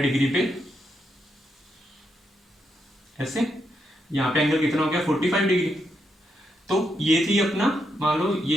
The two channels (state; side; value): normal; both; correlation 0.81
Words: डिग्री पे, ऐसे यहाँ पे एंगल कितना हो गया? 45 डिग्री। तो ये थी अपना, मान लो